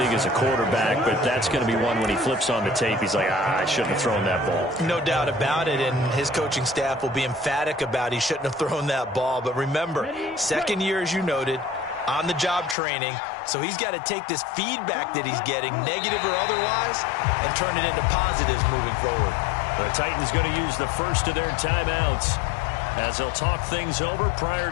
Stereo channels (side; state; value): right; drops out; at 12.8 s